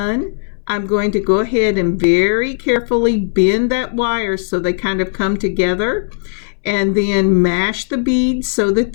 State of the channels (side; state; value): right; silent; 65 dB below the other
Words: I'm going to go ahead and very carefully bend that wire so they kind of come together, and then mash the beads so that